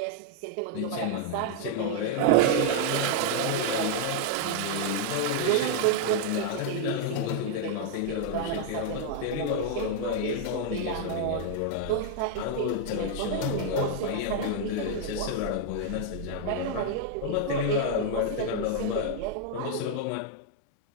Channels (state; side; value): different; both; correlation -0.01